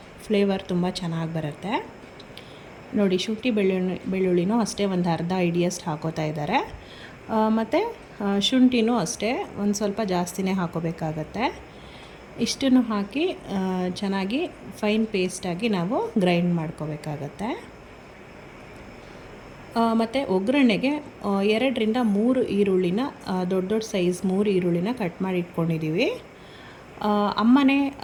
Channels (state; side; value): identical; both; correlation 1.00